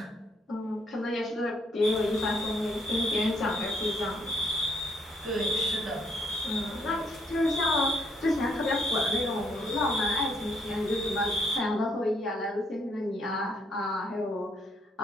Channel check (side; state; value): both; normal; correlation 0.70